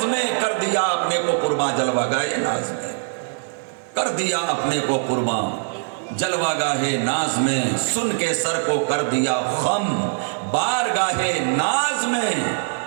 میں، کر دیا اپنے کو قرباں جلوہ گاہ ناز میں، کر دیا اپنے کو قرباں جلوہ گاہ ناز میں، سن کے سر کو کر دیا خم بارگاہ ناز میں،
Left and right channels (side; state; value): left; silent; digital silence